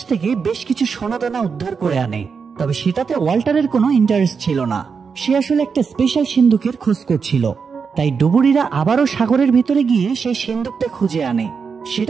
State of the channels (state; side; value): quieter; left; 5.7 dB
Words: থেকে বেশ কিছু সোনাদানা উদ্ধার করে আনে, তবে সেটাতে ওয়াল্টারের কোনো ইন্টারেস্ট ছিল না। সে আসলে একটা স্পেশাল সিন্ধুকের খোঁজ করছিল। তাই ডুবুরিরা আবারও সাগরের ভিতরে গিয়ে সেই সিন্ধুকটা খুঁজে আনে।